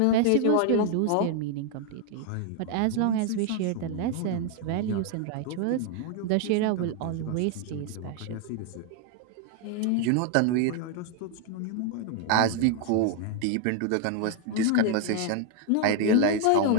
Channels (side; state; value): both; different; correlation 0.00